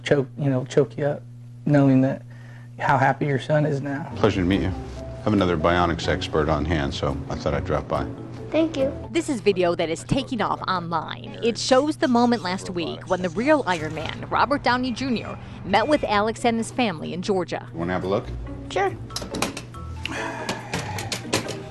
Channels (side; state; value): both; identical; correlation 1.00